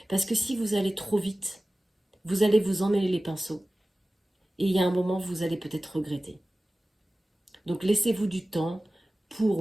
Parce que si vous allez trop vite, vous allez vous emmêler les pinceaux. Et il y a un moment, vous allez peut-être regretter. Donc laissez-vous du temps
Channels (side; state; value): both; normal; correlation 0.96